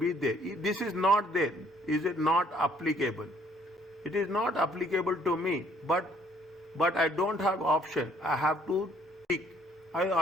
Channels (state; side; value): normal; both; correlation 0.62